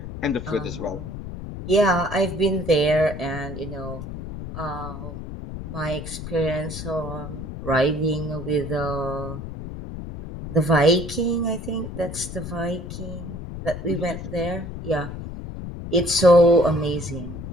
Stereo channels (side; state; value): left; noise; rumble, 9 dB below the sound